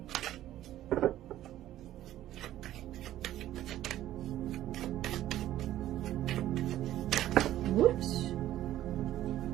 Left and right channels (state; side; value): quieter; left; 13.3 dB